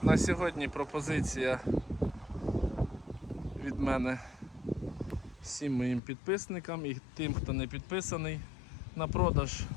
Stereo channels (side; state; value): right; drops out; at 6.0 s